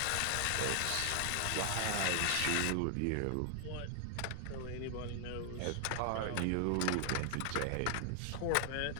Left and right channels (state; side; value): different; both; correlation 0.00